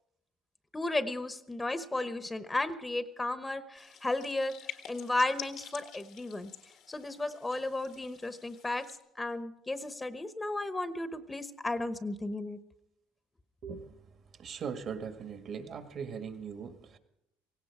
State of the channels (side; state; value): both; normal; correlation 0.91